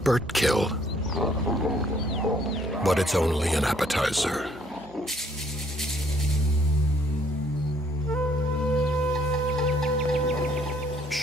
kill, but it's only an appetizer.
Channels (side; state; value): both; normal; correlation 0.65